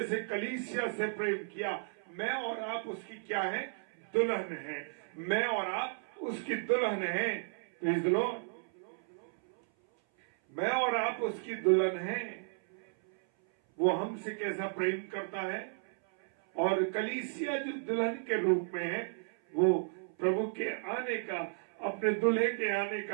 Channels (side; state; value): left; silent; 55 dB below the other